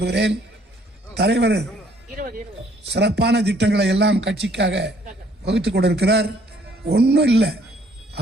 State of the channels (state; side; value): normal; both; correlation 0.63